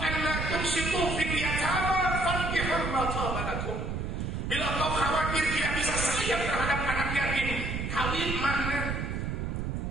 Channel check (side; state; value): right; noise; rumble, 3 dB below the sound